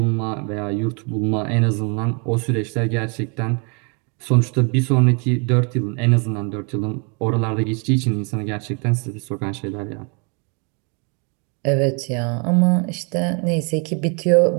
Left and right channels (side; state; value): left; quieter; 35.4 dB